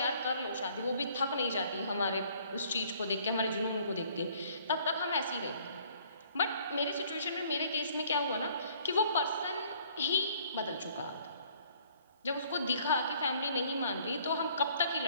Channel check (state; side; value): inverted; both; correlation -0.59